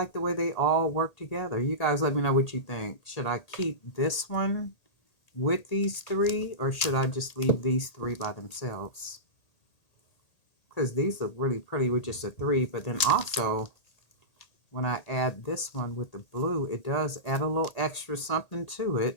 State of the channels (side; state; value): right; late; 1.8 ms